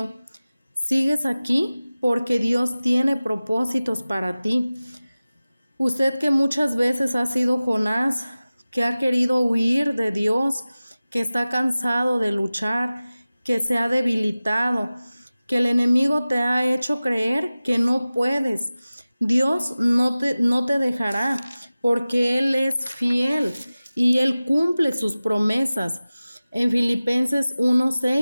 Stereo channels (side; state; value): both; inverted; correlation -0.97